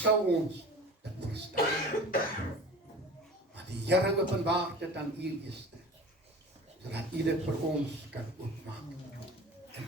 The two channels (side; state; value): both; normal; correlation 0.39